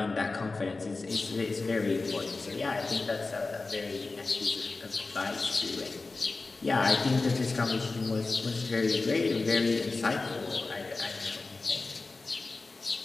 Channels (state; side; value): quieter; right; 3.7 dB